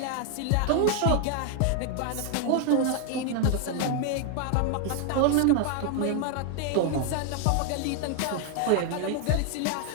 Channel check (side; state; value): both; different; correlation 0.00